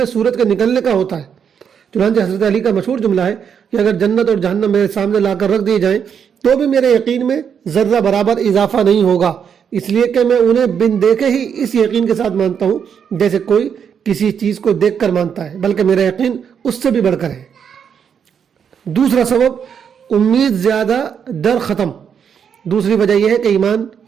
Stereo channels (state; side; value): quieter; left; 7.5 dB